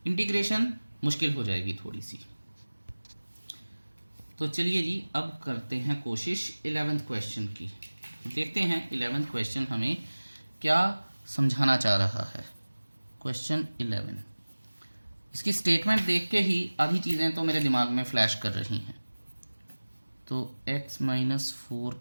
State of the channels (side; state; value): both; inverted; correlation -1.00